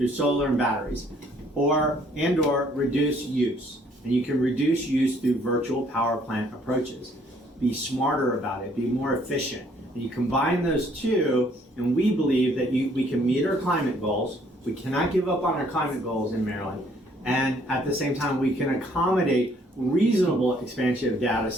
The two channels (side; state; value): both; normal; correlation 0.64